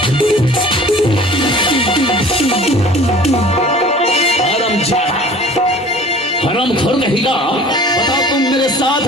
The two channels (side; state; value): both; normal; correlation 0.45